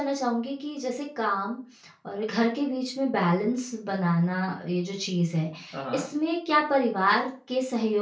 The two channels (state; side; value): identical; both; correlation 1.00